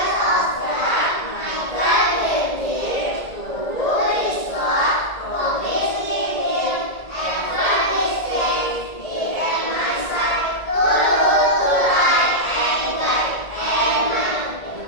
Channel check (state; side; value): late; right; 1.8 ms